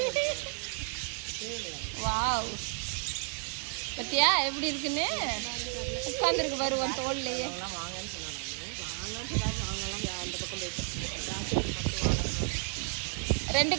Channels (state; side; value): quieter; left; 38.4 dB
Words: வாவ் பத்தியா எப்படி இருக்குன்னு உட்காந்துருக்கு பாரு உன் தோல்லையே. ரெண்டு